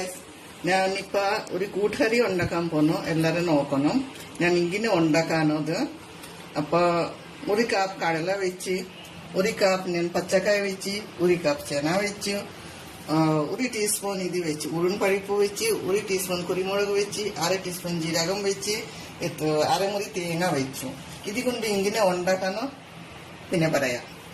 ഞാനിപ്പോ ഒരു കൂട്ടുകറി ഉണ്ടാക്കാൻ പോന്നു. എല്ലാരും നോക്കണം ഞാൻ ഇങ്ങനെ ഉണ്ടാക്കാനത്. അപ്പൊ ഒരു കപ്പ് കടല വെച്ച്, ഒരു കപ്പ് ഞാൻ പച്ചക്കായ വെച്ച്, ഒരു കപ്പ് ചെന വെച്ച്, ഒരു ടീസ്പൂൺ ഇത് വെച്ച് ഉഴുൻപരിപ്പ് വെച്ച്, ഒരു ടീസ്പൂൺ കുരുമുളക് വെച്ച്, അര ടീസ്പൂൺ ജീരകം വെച്ച്, അരമുറി തേങ്ങ വെച്ചു. ഇത് കൊണ്ട് ഇങ്ങനെ ഉണ്ടാക്കാനോ പിന്നെ പറയാം.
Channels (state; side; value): identical; both; correlation 1.00